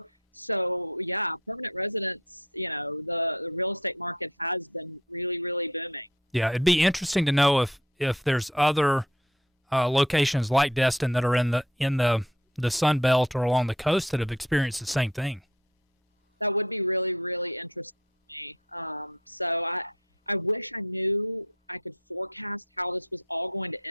so yeah, permanent residents, you know, the real estate market has been really, really booming. Yeah. It'd be interesting to know if there's other locations like Destin that are in the Sun Belt or along the coast that have experienced the same thing. That would be really, really interesting to me. So I wish I knew I could forecast how this was all going to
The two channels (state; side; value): normal; both; correlation 0.51